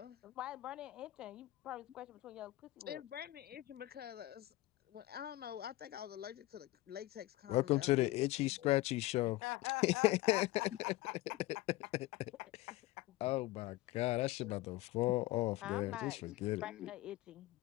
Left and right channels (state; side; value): quieter; right; 17.6 dB